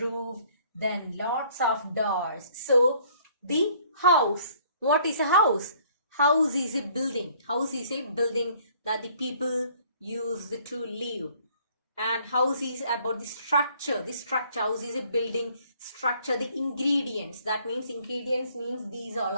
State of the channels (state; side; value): inverted; both; correlation -0.59